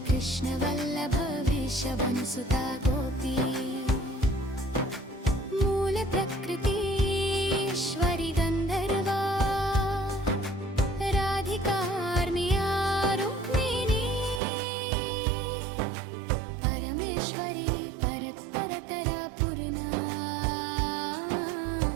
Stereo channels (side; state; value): left; drops out; at 14.4 s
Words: वल्लभ वृषभनुसुता गोपी मूल प्रकृति ईश्वरी गन्धर्वा राधिकार्मिया रुक्मिणी परमेश्वरी परत्परतरा